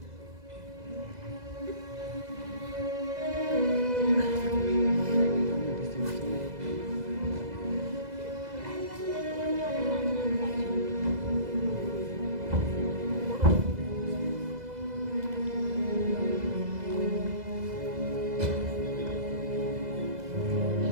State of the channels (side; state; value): left; late; 2.0 ms